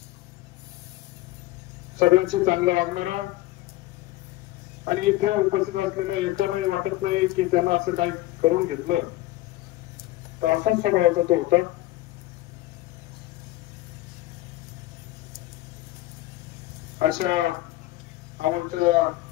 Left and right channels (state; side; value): quieter; right; 16.7 dB